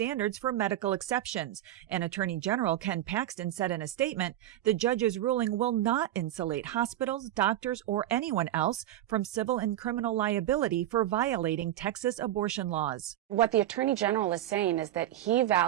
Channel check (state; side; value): quieter; left; 13.2 dB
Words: for medical exceptions. And Attorney General Ken Paxton said in a statement, the judge's ruling will not insulate hospitals, doctors, or anyone else from civil and criminal liability for violating Texas abortion laws. What the Attorney General is saying is that he